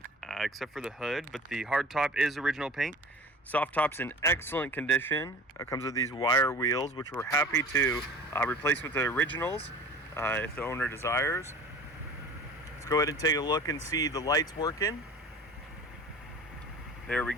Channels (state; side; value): normal; both; correlation 0.41